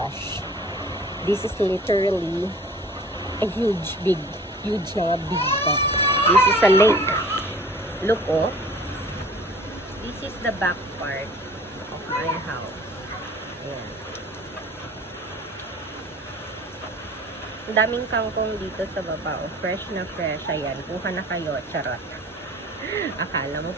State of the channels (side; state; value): both; normal; correlation 0.46